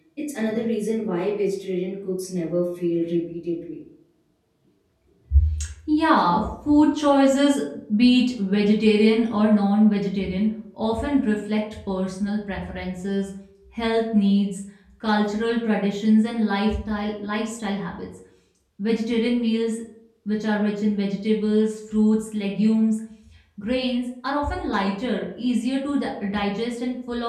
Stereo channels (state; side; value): identical; both; correlation 1.00